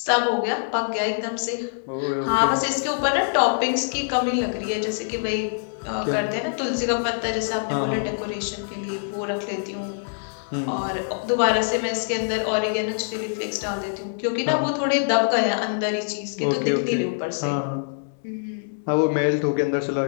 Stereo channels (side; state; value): right; silent; 62 dB below the other